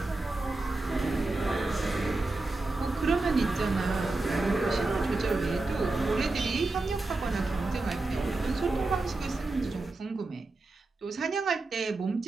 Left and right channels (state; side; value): quieter; left; 3.2 dB